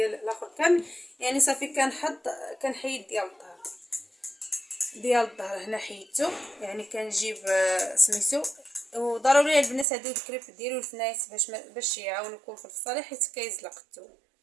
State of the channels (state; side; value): drops out; left; at 9.9 s